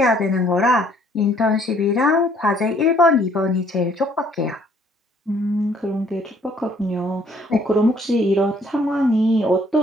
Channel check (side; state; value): both; normal; correlation 0.62